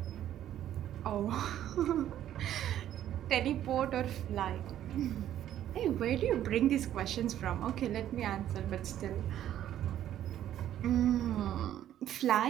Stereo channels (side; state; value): left; quieter; 11.6 dB